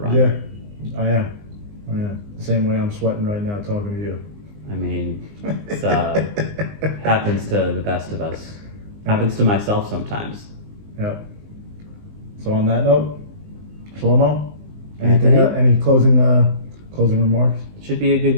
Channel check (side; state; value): left; late; 19 ms